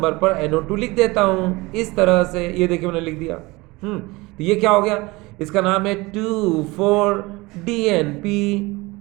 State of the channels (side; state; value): left; quieter; 22.6 dB